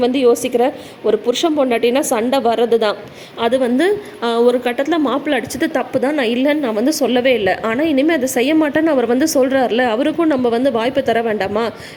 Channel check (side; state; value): both; identical; correlation 1.00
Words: வந்து யோசிக்கிற. ஒரு புருஷன் பொண்டாட்டினா சண்டை வர்றது தான். அது வந்து ஒரு கட்டத்தில் மாப்பிள்ளை அடிச்சது தப்பு தான், நான் இல்லைன்னு நான் வந்து சொல்லவே இல்லை. ஆனால் இனிமேல் அதை செய்ய மாட்டேன்னு அவர் வந்து சொல்கிறார்ல, அவருக்கும் நம்ம வந்து வாய்ப்பு தர வேண்டாமா?